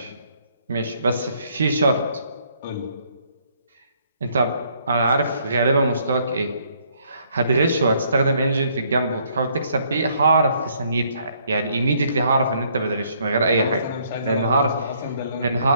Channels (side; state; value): both; inverted; correlation -0.67